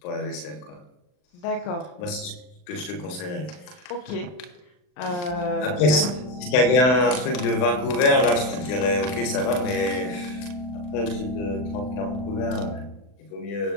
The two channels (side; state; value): right; late; 39 ms